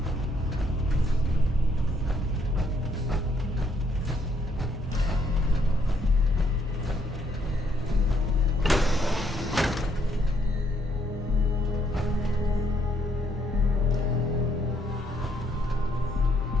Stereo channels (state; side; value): normal; both; correlation 0.70